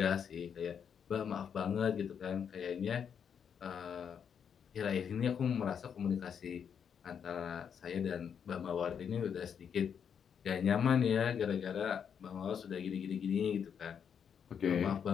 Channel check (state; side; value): quieter; right; 7.5 dB